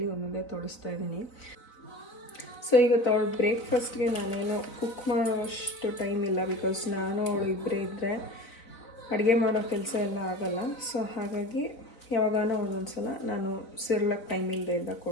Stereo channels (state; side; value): late; right; 4.0 ms